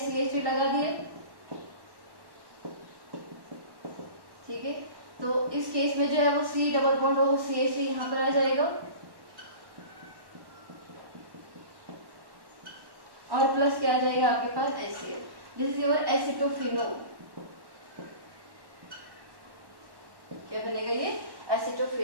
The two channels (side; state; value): left; late; 1.1 ms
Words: लगा दिए, ठीक है। तो इस केस में जो है वो C डबल बॉन्ड हो CH3 यहाँ पर आ जाएगा और प्लस क्या आ जाएगा आपके पास HCl। दिस इज योर एसिटोफिनोल, क्या बनेगा ये